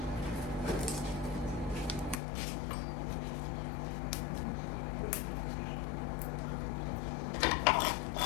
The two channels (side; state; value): right; drops out; at 2.2 s